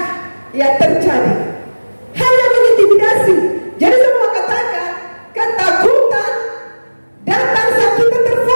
terjadi, hanya mengintimidasi. Jadi semua katakan ketakutan datang saat kita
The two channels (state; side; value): inverted; both; correlation -1.00